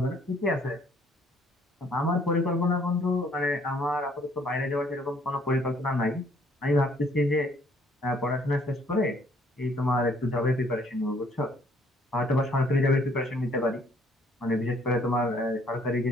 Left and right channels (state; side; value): normal; both; correlation 0.63